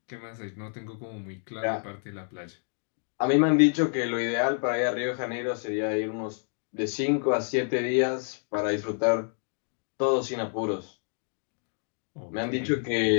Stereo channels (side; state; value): right; silent; 59 dB below the other